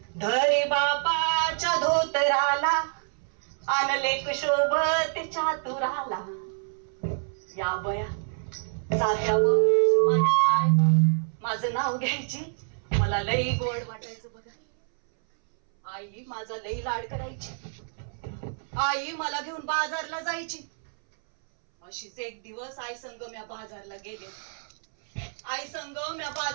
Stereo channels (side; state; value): left; silent; 60 dB below the other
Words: धरी बापाच्या धोतराला, आणलेक शोभत चातुराला. या बया जात्यावर माझी आई माझं नाव घ्यायची. मला लई गोड वाटायचं बघा. आई माझा लई लाड करायची. आई मला घेऊन बाजारला जायची. अशीच एक दिवस आई संग म्या बाजारला गेले. आई संग म्या